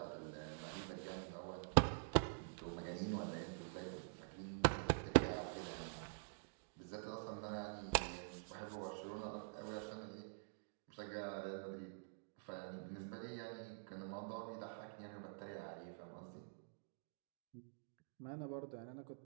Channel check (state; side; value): silent; left; digital silence